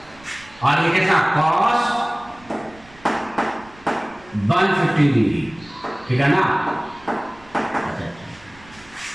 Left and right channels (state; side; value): noise; right; rumble, 25 dB below the sound